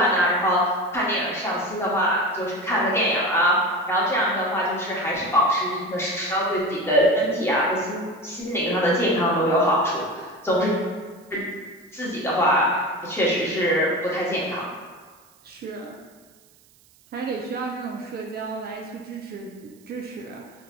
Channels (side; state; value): right; noise; hiss, 30 dB below the sound